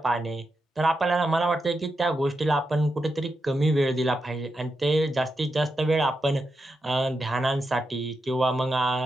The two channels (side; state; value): both; normal; correlation 0.86